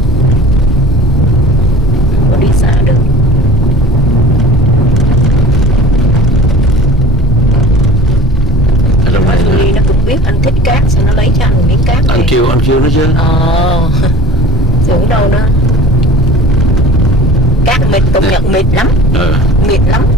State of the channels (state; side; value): normal; both; correlation 0.39